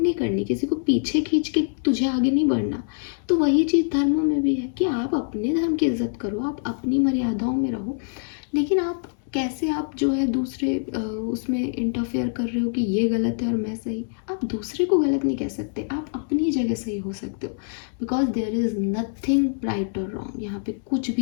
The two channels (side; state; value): right; silent; 62 dB below the other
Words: नहीं करनी, किसी को पीछे खींच के तुझे आगे नहीं बढ़ना, तो वही चीज़ धर्मों में भी है कि आप अपने धर्म की इज्जत करो, आप अपनी मर्यादाओं में रहो। लेकिन आप कैसे, आप जो है दूसरे उसमें इंटरफेयर कर रहे हो कि ये गलत है और मैं सही। आप दूसरे को गलत नहीं कह सकते, आप अपनी जगह सही हो सकते हो, because there is nothing right और रॉन्ग। यहाँ पे कुछ